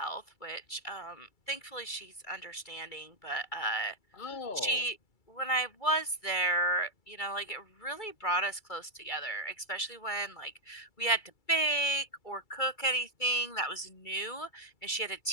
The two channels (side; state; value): right; late; 2.3 ms